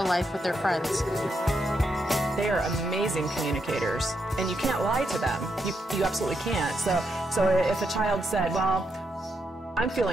life with their friends. they are amazing communicators, and you can't lie to them. You absolutely can't. So if a child said, well, I'm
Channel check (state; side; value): normal; both; correlation 0.81